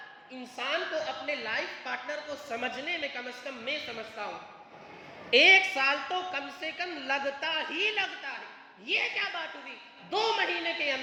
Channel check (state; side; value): identical; both; correlation 1.00